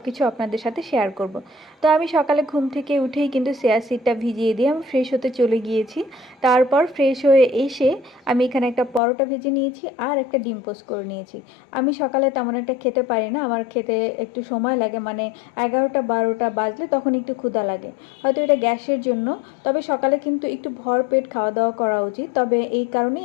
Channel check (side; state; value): right; drops out; at 9.0 s